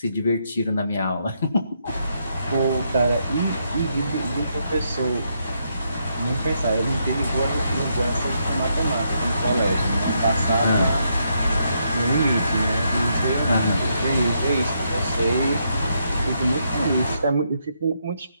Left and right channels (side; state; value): both; inverted; correlation -0.78